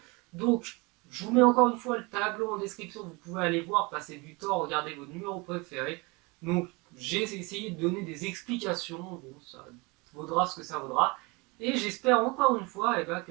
Donc, je vous mets encore une fois le tableau en description, vous pouvez aller voir, passer du temps, regarder vos numéros préférés. Donc, j'ai essayé de donner des explications, bon, ça vaudra ce que ça vaudra. Et j'espère encore une fois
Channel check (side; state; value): left; quieter; 26.8 dB